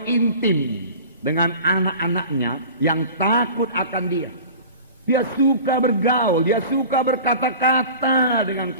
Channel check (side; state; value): both; inverted; correlation -0.39